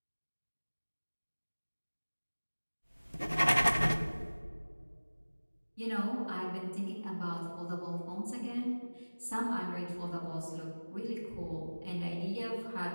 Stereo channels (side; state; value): both; inverted; correlation -1.00